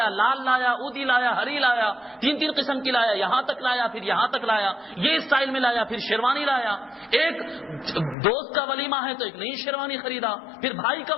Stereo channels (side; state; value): right; drops out; at 8.2 s